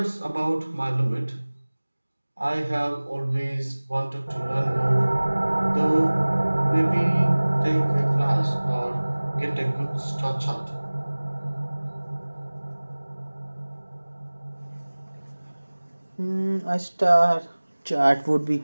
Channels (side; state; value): both; inverted; correlation -1.00